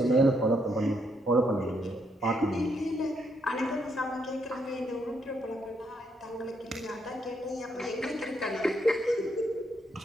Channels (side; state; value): both; normal; correlation 0.75